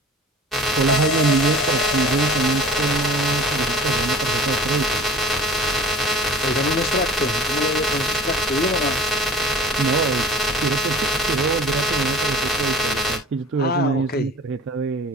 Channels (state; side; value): normal; both; correlation 0.43